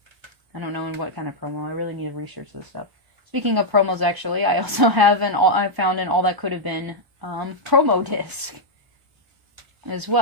I don't know in what kind of promo. I really need to research this stuff. Speaking of promos, actually, I also have I found an All That Could Have Been promo disc as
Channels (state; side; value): late; left; 1.0 ms